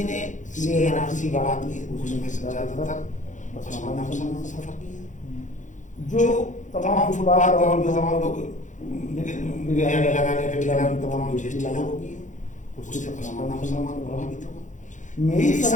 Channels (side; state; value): right; late; 0.36 ms